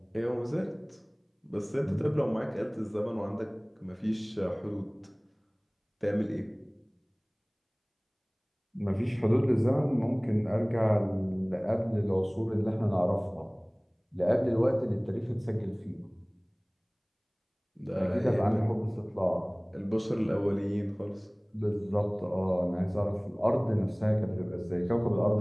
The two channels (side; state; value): both; identical; correlation 1.00